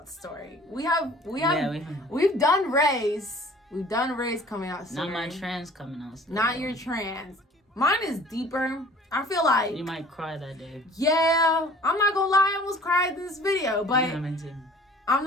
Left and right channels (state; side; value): normal; both; correlation 0.49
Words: story. We've done Ray's. We've done Ray's coming out story. Not my trans coming out story. Not your trans. Mine is deeper. I feel like you might cry that day. Yeah, I'm not gonna lie, I almost cried in this video, but yeah, me too. I'm